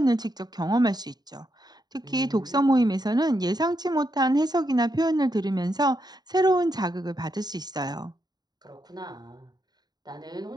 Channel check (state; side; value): late; left; 0.20 ms